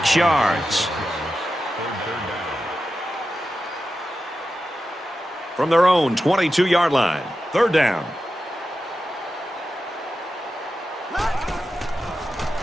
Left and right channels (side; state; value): both; normal; correlation 0.91